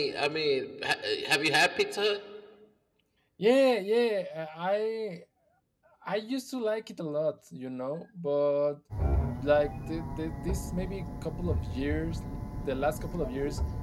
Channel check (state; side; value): identical; both; correlation 1.00